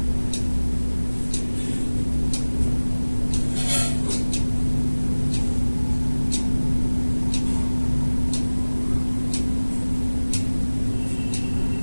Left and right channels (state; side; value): inverted; both; correlation -1.00